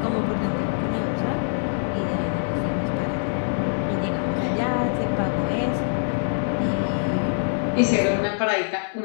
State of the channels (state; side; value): silent; right; 63 dB below the other